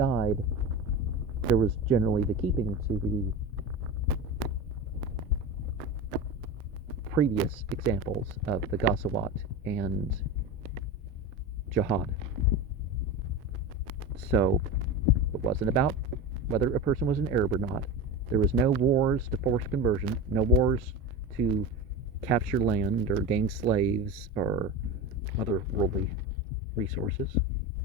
there was generally the keeping to the previous examples of the Ghazawat and jihad. So, it wasn't about whether a person was an Arab or not. There was no wars to force conversion, no wars to capture land or gain slaves or other worldly resources.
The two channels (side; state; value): both; normal; correlation 0.25